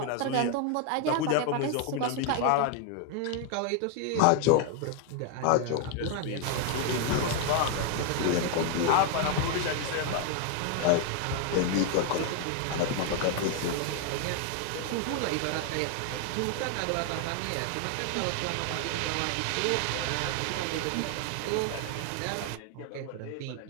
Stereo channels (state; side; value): different; both; correlation 0.01